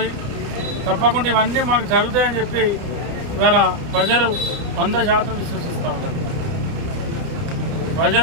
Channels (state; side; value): late; left; 30 ms